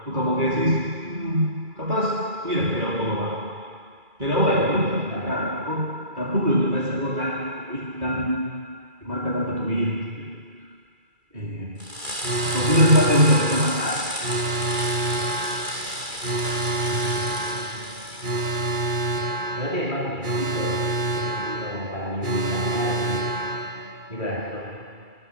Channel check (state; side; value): late; left; 2.3 ms